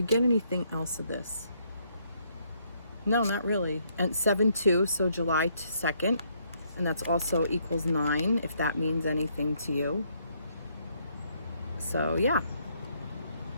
get anything else of this? No, not really. And 7/2, so July 2nd. And that's also equals 9, if that means anything to you. So yeah.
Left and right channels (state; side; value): inverted; both; correlation -0.71